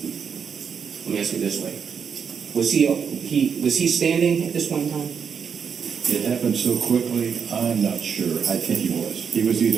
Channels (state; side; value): quieter; left; 6.8 dB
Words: Let me ask you this way: was he standing at this point in time? It happened so quickly, I'm not sure. I think he was. He was